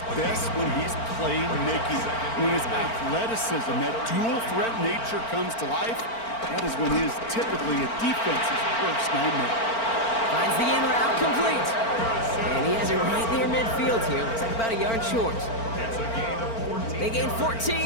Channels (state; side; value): late; right; 4.4 ms